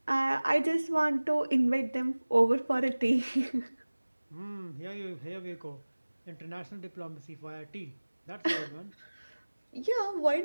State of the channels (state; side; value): inverted; both; correlation -1.00